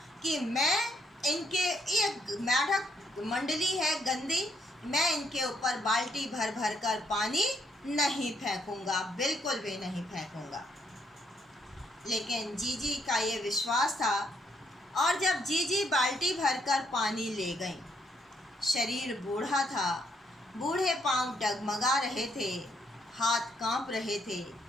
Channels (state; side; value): normal; both; correlation 0.73